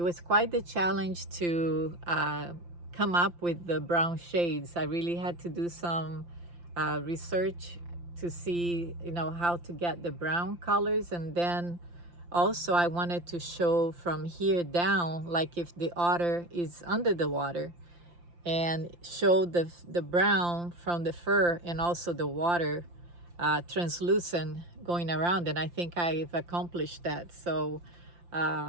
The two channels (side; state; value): left; late; 5.8 ms